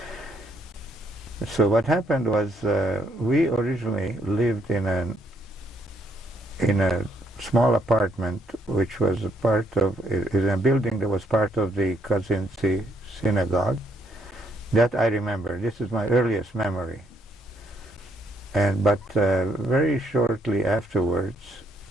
So what happened was we originally lived in a small apartment which was a part of in a building that was part of the Kazinci synagogue. That I remember. This is my earliest memory. But very shortly afterwards,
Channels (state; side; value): normal; both; correlation 0.72